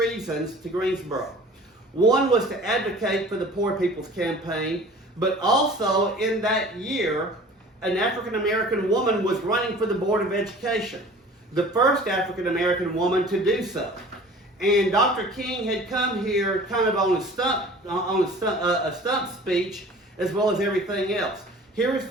to Greensboro. One was to advocate for the Poor People's Campaign, but also in that year, an African American woman was running for the Board of Education, the first African American woman to do so. And Dr. King had come here kind of on a stump speech as well as everything else. Here is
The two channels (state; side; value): normal; both; correlation 0.45